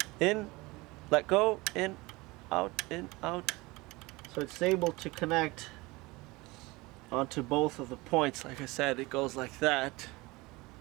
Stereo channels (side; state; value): left; quieter; 22.8 dB